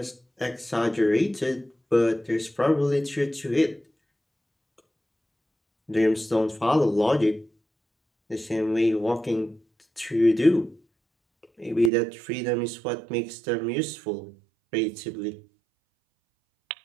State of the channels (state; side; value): drops out; left; at 11.9 s